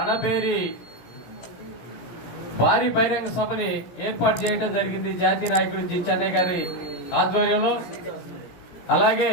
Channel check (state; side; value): late; right; 17 ms